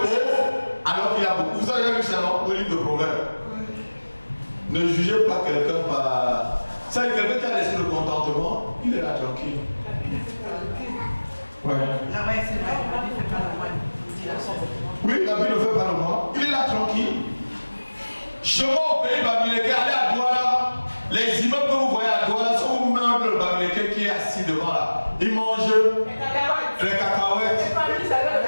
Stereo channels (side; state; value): both; inverted; correlation -1.00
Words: pauvre alors qu'il a beaucoup. Vous avez vu ça dans le livre de Proverbes. Ne jugez pas quelqu'un par... Ça, quelqu'un qui a l'esprit de contentement, il est là tranquille. Ouais. Ah ouais, c'est vrai. La vie ne fait pas le moine. Il dit la sorte. Oui, la vie ne fait pas le moine. Il est là tranquille. Chemin au pays Bamileke, allez à Douala. Les immeubles que vous voyez à Douala sont au même le Bamileke qui est assis devant là. Il mange les cacahuètes